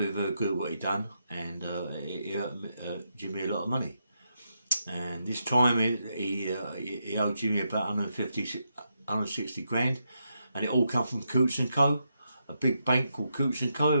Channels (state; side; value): inverted; both; correlation -0.82